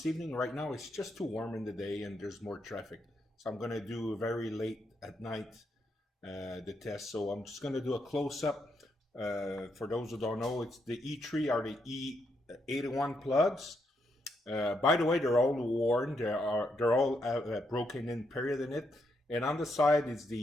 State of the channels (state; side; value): normal; both; correlation 0.79